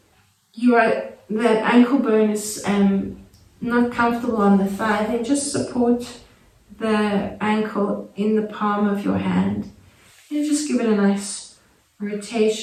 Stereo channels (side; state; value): both; identical; correlation 1.00